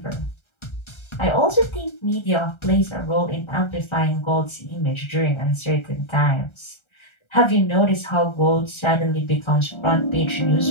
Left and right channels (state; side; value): late; right; 1.3 ms